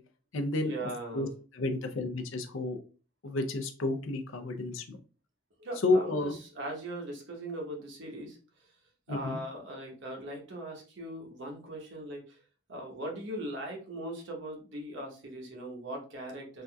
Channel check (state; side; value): normal; both; correlation 0.50